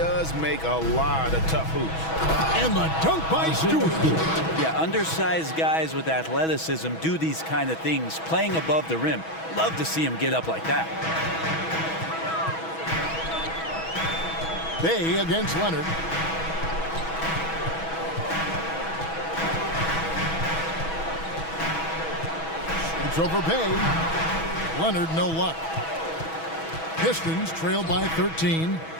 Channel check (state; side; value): late; right; 6.2 ms